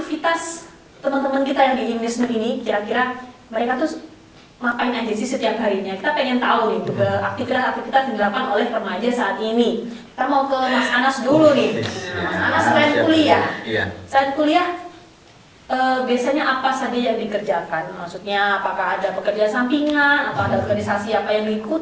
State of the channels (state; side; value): identical; both; correlation 1.00